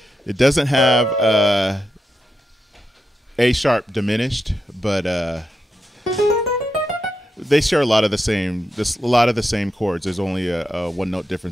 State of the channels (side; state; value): both; normal; correlation 0.86